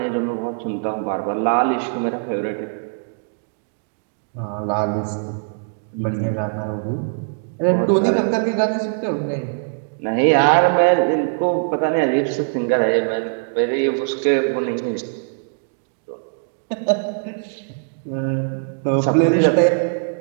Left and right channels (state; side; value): silent; left; digital silence